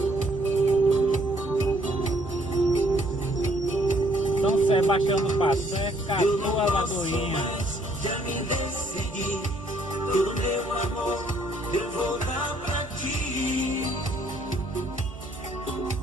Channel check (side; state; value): both; normal; correlation 0.65